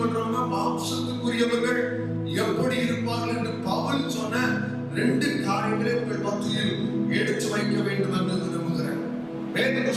மாம்சத்துக்குரியவர்கள் எப்படி இருப்பார்கள் என்று பவுல் சொன்ன 2 காரியங்களை உங்கள் மத்தியில் எடுத்து வைக்க வேண்டும் என்று விரும்புகிறேன். வேத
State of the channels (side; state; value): both; identical; correlation 1.00